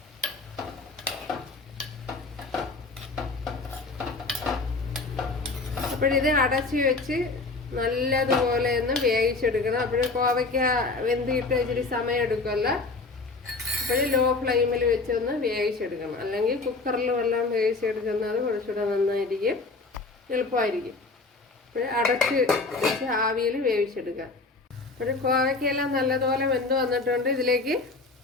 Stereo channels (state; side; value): quieter; right; 3.7 dB